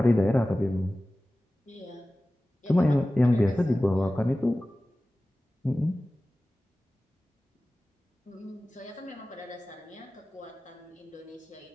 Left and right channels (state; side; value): normal; both; correlation 0.96